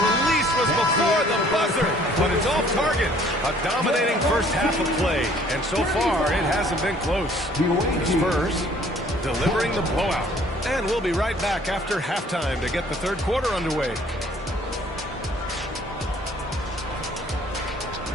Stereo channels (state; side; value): normal; both; correlation 0.57